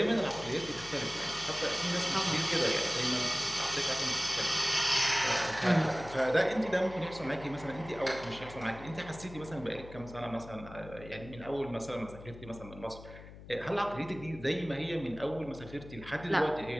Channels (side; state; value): left; noise; hum, 16 dB below the sound